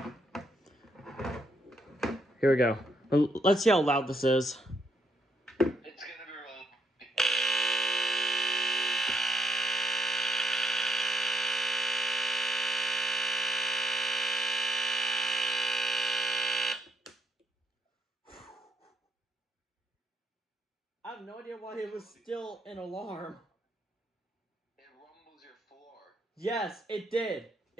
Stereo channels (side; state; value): both; normal; correlation 0.74